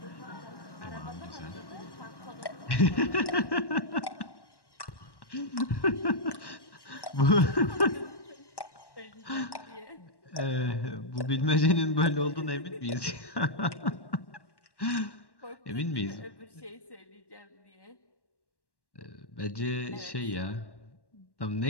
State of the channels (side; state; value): right; late; 1.1 ms